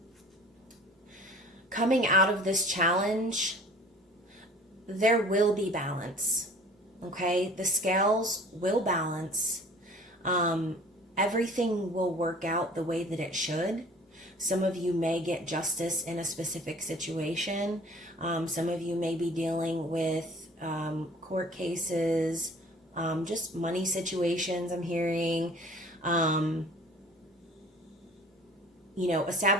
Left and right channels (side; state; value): both; normal; correlation 0.47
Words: coming out of this challenge, there will be balance, okay? The scales will balance. Everything will work out the way that it should. Some of you may get justice in a specific situation. Some of you may be dealing with court cases, just money situations, I'm hearing. You know,